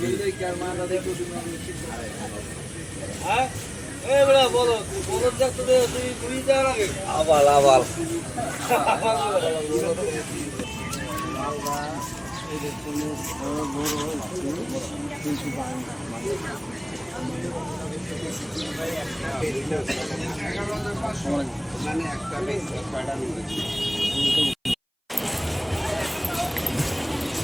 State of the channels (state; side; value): identical; both; correlation 1.00